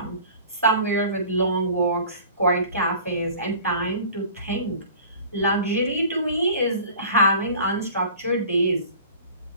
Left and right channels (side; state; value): both; inverted; correlation -0.44